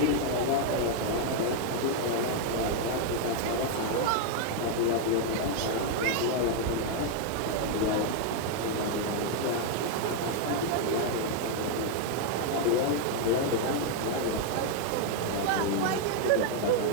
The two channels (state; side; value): different; both; correlation 0.00